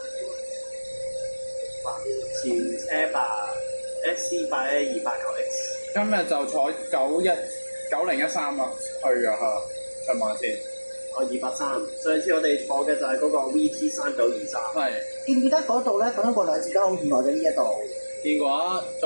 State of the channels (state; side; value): inverted; both; correlation -1.00